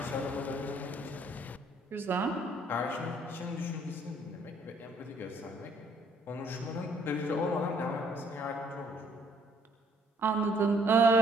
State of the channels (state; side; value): normal; both; correlation 0.64